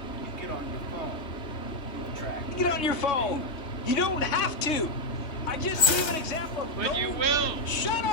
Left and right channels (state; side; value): late; right; 3.2 ms